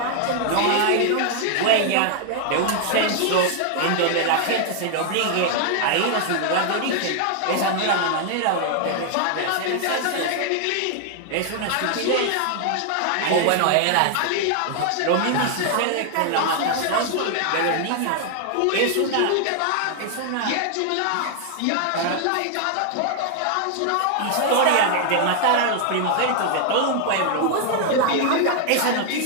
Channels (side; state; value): both; different; correlation 0.00